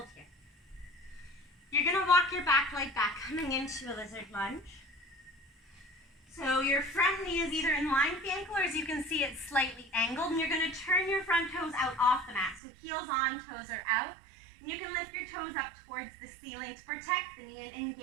here. You're going to walk your back leg back, coming into a lizard lunge. So your front knee is either in line with the ankle, or as you can see, it's slightly angled, and you're going to turn your front toes out off the mat. So heels on, toes are out. And you can lift your toes up towards the ceiling to protect the knee and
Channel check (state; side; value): drops out; left; at 12.6 s